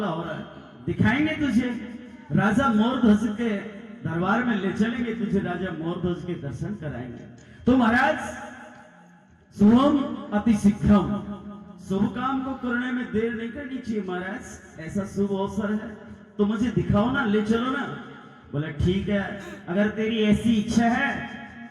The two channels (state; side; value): identical; both; correlation 1.00